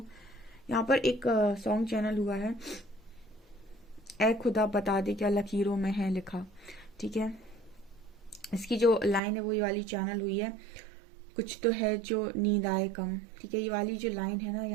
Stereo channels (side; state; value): left; drops out; at 9.2 s